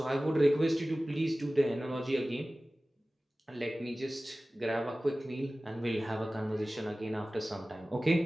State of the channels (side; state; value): both; normal; correlation 0.97